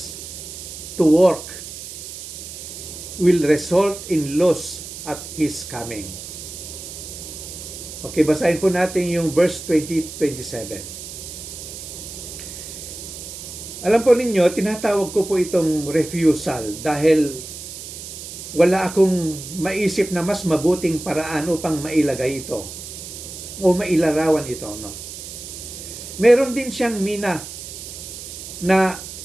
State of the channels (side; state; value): right; noise; hiss, 11 dB below the sound